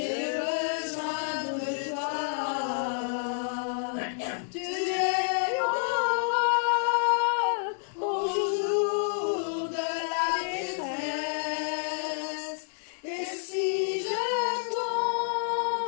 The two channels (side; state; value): right; silent; digital silence